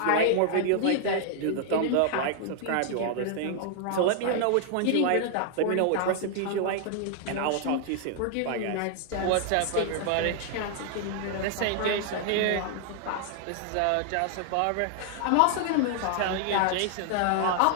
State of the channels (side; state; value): both; different; correlation 0.00